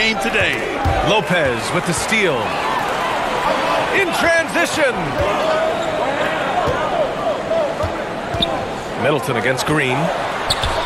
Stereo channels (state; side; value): identical; both; correlation 1.00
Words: today. Lopez with the steal. In transition. Middleton against Green.